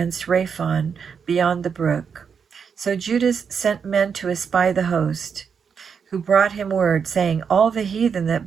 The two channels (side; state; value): left; quieter; 6.5 dB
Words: Raphon beyond the brook. So Judas sent men to espy the host, who brought him word, saying, All the heathen that